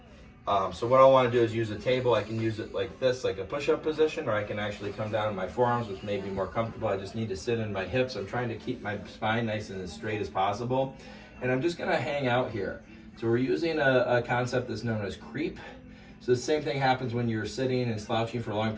So what I want to do is use a table. I can use it like this, like a push-up position, or I can actually come down on my forearms, which may be more comfortable. I just need to sit in my hips. I'm trying to keep my spine nice and as straight as possible. And I'm just going to hang out here. So we're using a concept that's known as creep. So the same thing happens when you're sitting and slouching for long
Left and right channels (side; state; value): both; identical; correlation 1.00